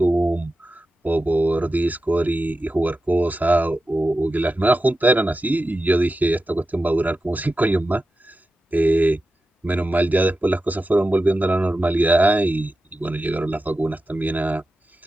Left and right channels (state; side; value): normal; both; correlation 0.92